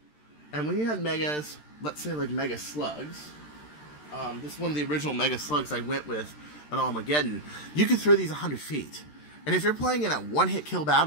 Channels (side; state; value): right; late; 13 ms